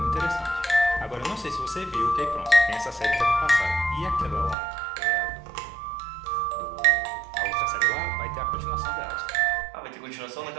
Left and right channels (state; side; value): drops out; left; at 4.5 s